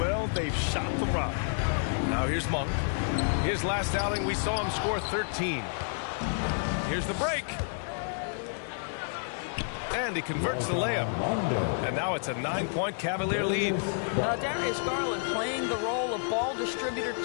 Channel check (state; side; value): silent; right; digital silence